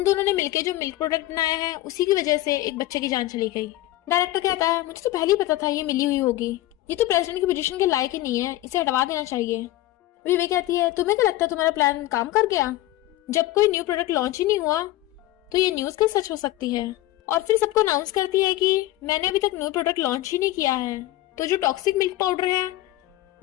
दोनों ने मिलकर जो मिल्क प्रोडक्ट बनाया है उसी की वजह से एक बच्चे की जान चली गई। डायरेक्टर कहता है मुझे तो पहले ही पता था ये मिली हुई होगी, ये तो प्रेसिडेंट की पोजीशन के लायक ही नहीं है, इसे हटवा देना चाहिए। विवे कहती है तुम्हें क्या लगता है तुम्हारा प्लान काम कर गया, जब कोई न्यू प्रोडक्ट लॉन्च ही नहीं हुआ तो ये न्यूज कैसे सच हो सकती है। और फिर सबको अनाउंस करती है कि मैंने अभी तक न्यू प्रोडक्ट लॉन्च ही नहीं किया है, तो जो टॉक्सिक मिल्क पाउडर है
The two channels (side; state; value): right; quieter; 16.0 dB